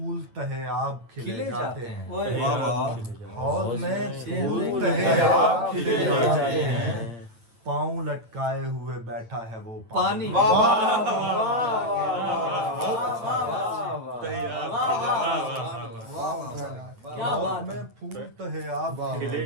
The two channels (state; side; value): late; left; 9.0 ms